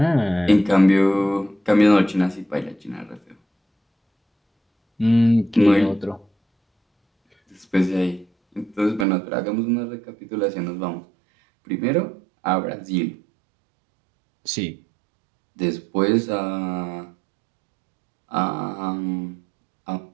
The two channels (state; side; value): drops out; left; at 9.1 s